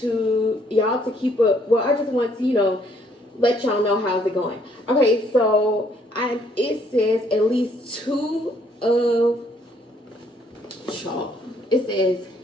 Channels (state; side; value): normal; both; correlation 0.66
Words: y'all to keep up. Well, I just want to, you know, let y'all know how's it going. Okay, so it says at least two of y'all. It says